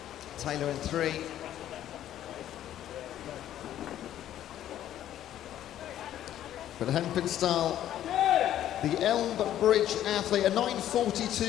Taylor in 3. But Hampenstall, the Elmbridge athlete, a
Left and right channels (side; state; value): right; quieter; 11.8 dB